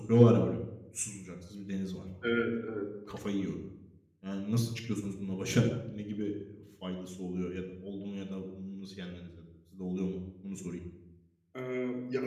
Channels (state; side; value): identical; both; correlation 1.00